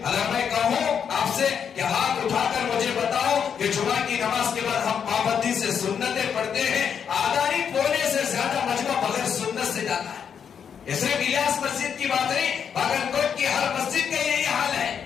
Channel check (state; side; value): quieter; right; 7.5 dB